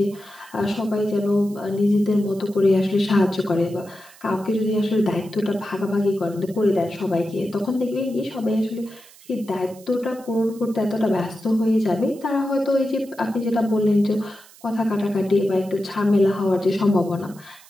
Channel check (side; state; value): right; noise; hiss, 23 dB below the sound